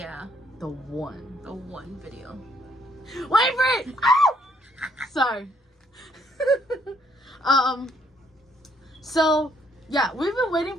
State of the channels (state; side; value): normal; both; correlation 0.68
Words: The one. The one video. Wait for it! Sorry. So, yeah, we've been waiting